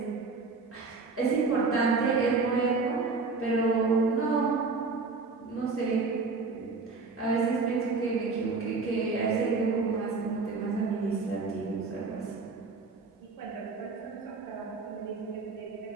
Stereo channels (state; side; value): quieter; left; 4.2 dB